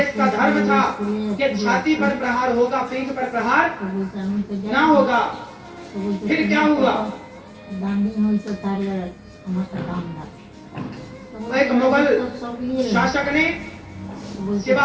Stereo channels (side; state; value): both; identical; correlation 1.00